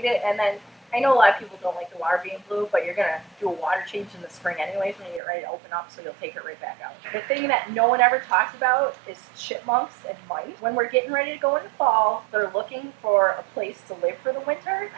it, and then I know a lot of people don't like the water being blue, but you're gonna do a water change in the spring anyways when you get ready to open up, so you'll take it right back out. The thing that no one ever talks about is chipmunks and mice. When we're getting ready to go into fall, they're looking for a place to live for the winter,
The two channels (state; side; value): drops out; left; at 5.2 s